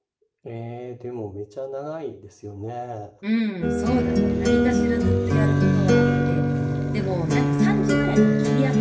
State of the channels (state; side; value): identical; both; correlation 1.00